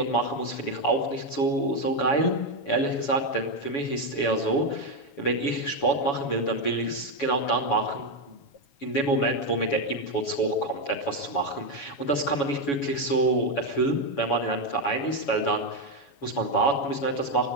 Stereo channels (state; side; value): late; right; 7.1 ms